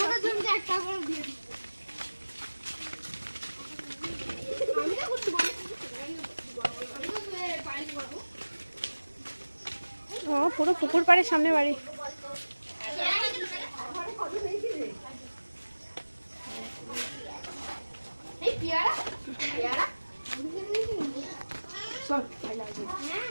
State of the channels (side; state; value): both; inverted; correlation -1.00